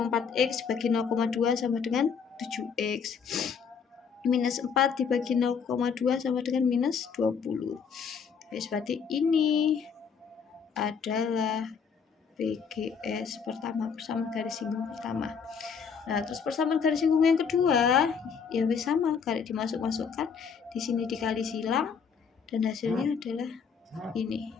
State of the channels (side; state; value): right; quieter; 6.3 dB